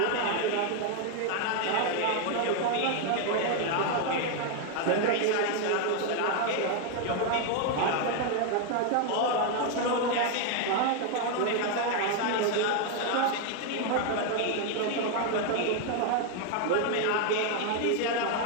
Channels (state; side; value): different; both; correlation 0.01